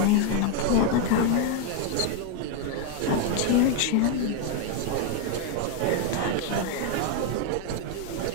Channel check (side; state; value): both; different; correlation 0.01